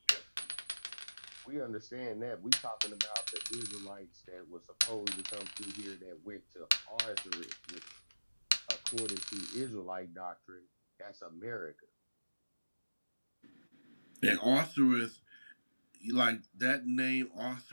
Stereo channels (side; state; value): both; inverted; correlation -1.00